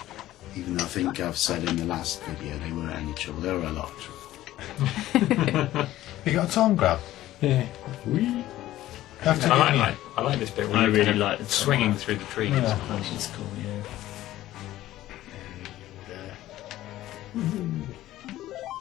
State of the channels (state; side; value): quieter; right; 14.8 dB